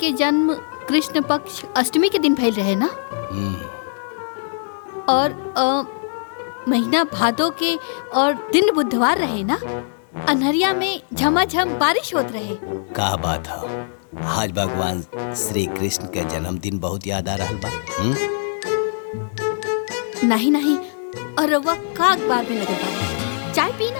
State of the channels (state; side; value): silent; right; digital silence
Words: जन्म कृष्ण पक्ष अष्टमी के दिन भइल रहे ना? और महीना भादो के और दिन बुधवार रहे ना? अनहरिया में झमाझम बारिश होत रहे। का बात है, आज भगवान श्री कृष्ण के जन्मदिन बहुत याद आ रहल बा। नहीं नहीं, और रउआ का अखबार में लगल बा? चाय पी